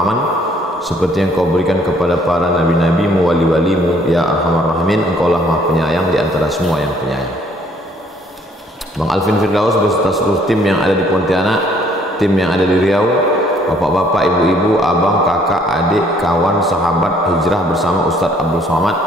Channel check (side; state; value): both; normal; correlation 0.62